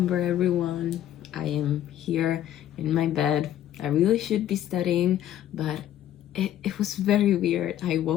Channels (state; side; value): quieter; right; 11.8 dB